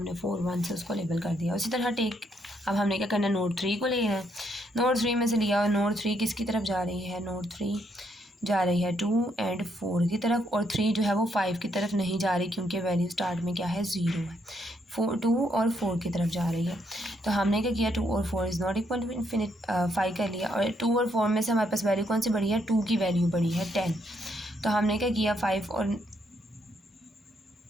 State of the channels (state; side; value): normal; both; correlation 0.74